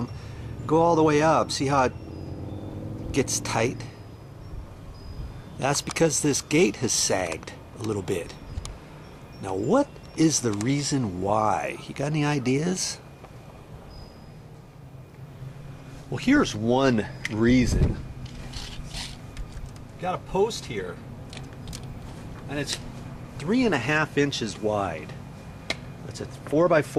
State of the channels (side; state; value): both; identical; correlation 1.00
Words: Go all the way up. See how it gets tight? That's because this gate has sagged a little bit. Now, what is the reason why? You got any ideas? Well, here's one reason. Got a post here, and it's 3.5 inches wide. It's a